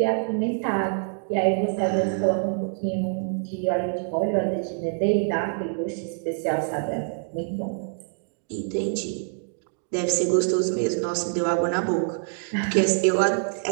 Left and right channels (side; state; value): left; silent; digital silence